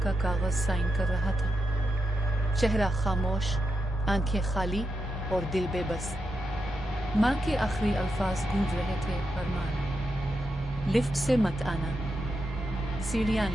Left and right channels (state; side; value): normal; both; correlation 0.86